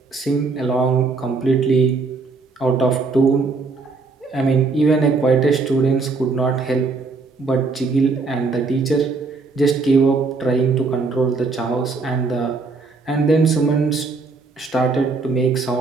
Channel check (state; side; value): quieter; left; 4.1 dB